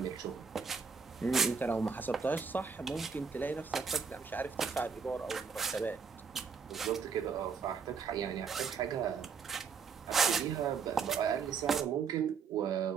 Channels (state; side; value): quieter; left; 5.9 dB